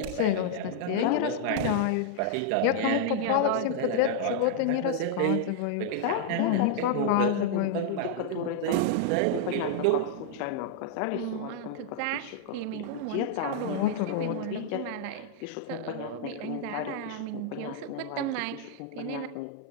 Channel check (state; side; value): different; both; correlation -0.01